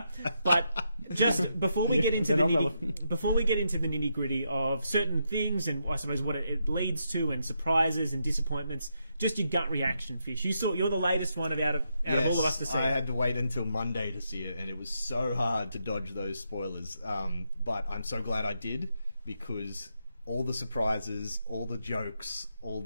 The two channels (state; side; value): inverted; both; correlation -0.81